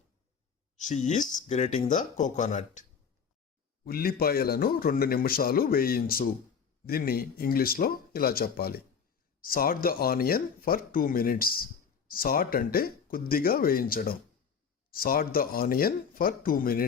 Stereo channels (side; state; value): right; quieter; 6.5 dB